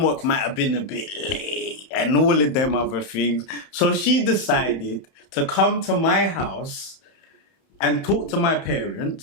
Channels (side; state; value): right; late; 31 ms